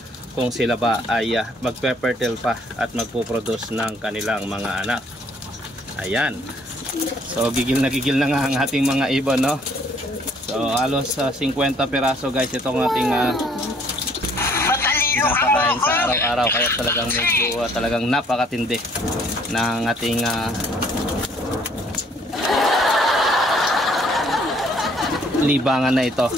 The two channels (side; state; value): both; normal; correlation 0.61